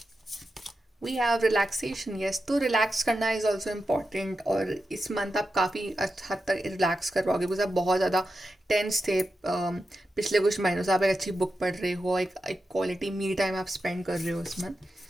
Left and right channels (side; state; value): both; normal; correlation 0.90